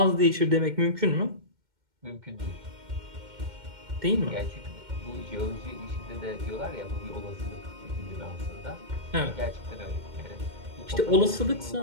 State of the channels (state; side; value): late; left; 2.1 ms